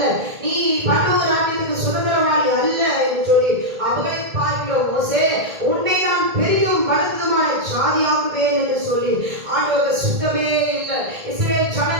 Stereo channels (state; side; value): late; left; 1.8 ms